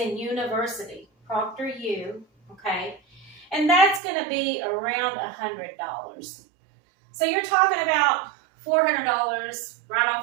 university, ProctorU, okay? And that's going to be around $100. So you're talking about $400 right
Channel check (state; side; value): drops out; left; at 4.0 s